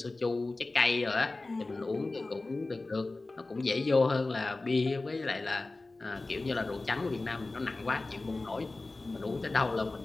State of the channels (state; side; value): quieter; right; 3.2 dB